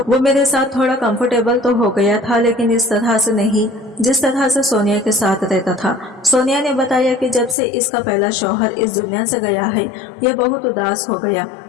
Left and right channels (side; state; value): right; drops out; at 7.6 s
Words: मेरे साथ थोड़ा कंफर्टेबल तो हो गया था, लेकिन इस तरह से नहीं जिस तरह से सोनिया के साथ रहता था। सोनिया ने बताया कि जब से इसका पहला शौहर इस दुनिया से गया है, ये बहुत उदास हो गया